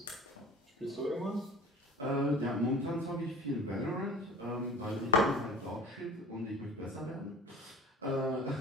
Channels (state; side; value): normal; both; correlation 0.41